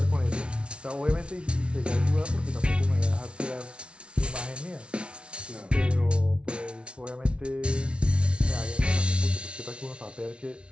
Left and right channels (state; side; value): late; left; 0.058 ms